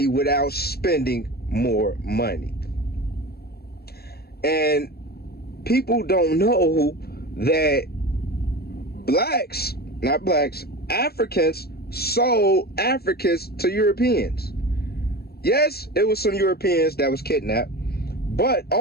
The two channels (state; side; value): late; right; 0.46 ms